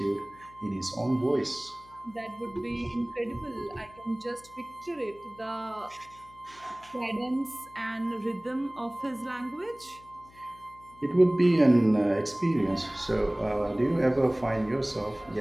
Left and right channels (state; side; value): noise; left; hum, 25 dB below the sound